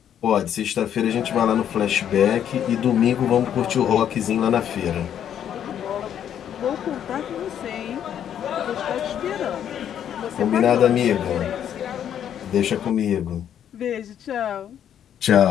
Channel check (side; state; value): right; quieter; 9.6 dB